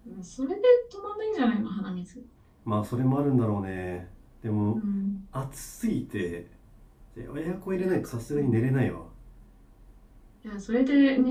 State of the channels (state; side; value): identical; both; correlation 1.00